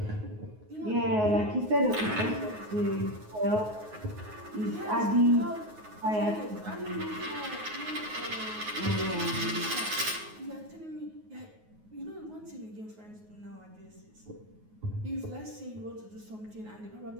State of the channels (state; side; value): late; left; 9.4 ms